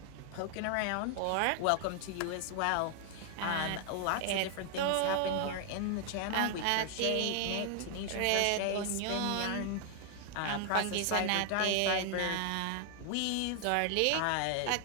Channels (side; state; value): both; different; correlation 0.00